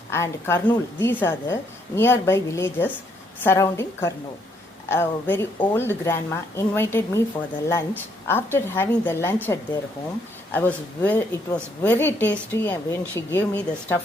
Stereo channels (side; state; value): both; normal; correlation 0.71